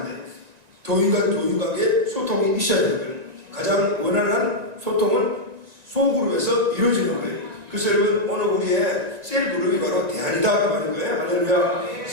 돼요. 교인과 교인 관계 소통이 있어야 되는 거예요. 가장 원활한 소통은 소그룹에서 이루어지는 거예요. 그래서 여러분, 오늘 우리의 셀그룹이 바로 대안이다 그 말인 거예요. 할렐루야.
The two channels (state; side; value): late; left; 1.9 ms